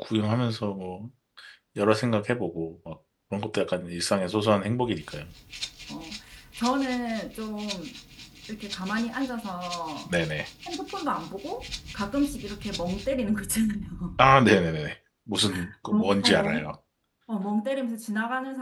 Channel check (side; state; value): both; identical; correlation 1.00